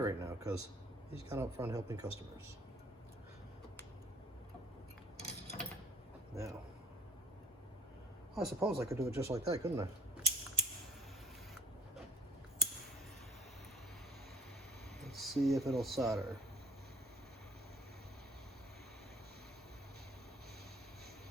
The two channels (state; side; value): normal; both; correlation 0.52